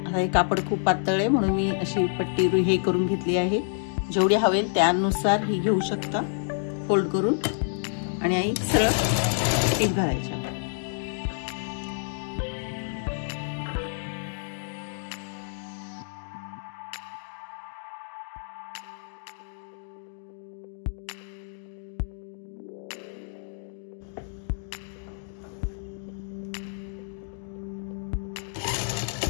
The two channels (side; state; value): right; silent; digital silence